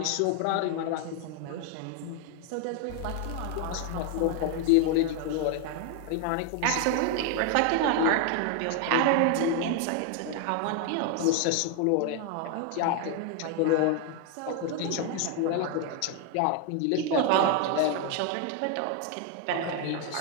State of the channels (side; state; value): both; different; correlation 0.00